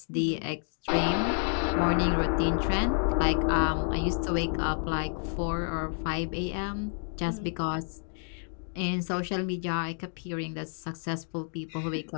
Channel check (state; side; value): silent; right; 58 dB below the other